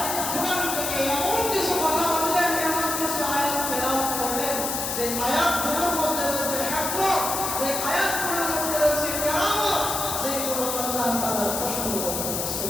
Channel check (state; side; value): noise; left; hiss, 2 dB below the sound